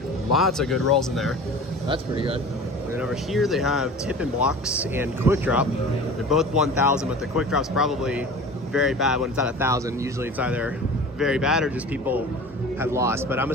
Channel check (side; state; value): both; normal; correlation 0.39